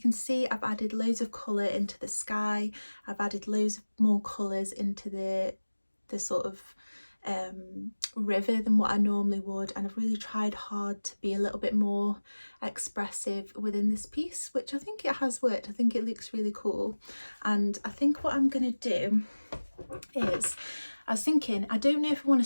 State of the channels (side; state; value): both; inverted; correlation -1.00